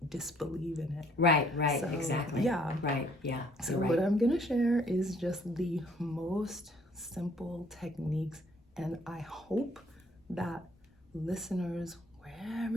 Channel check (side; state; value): both; normal; correlation 0.62